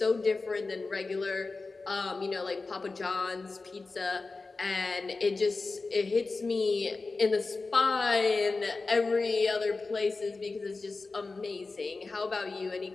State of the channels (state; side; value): quieter; right; 3.8 dB